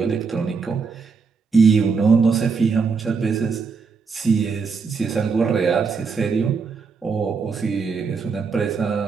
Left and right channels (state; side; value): quieter; left; 5.1 dB